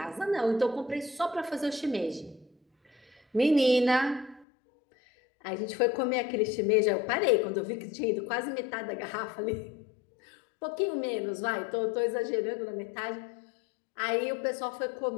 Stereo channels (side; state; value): right; drops out; at 4.5 s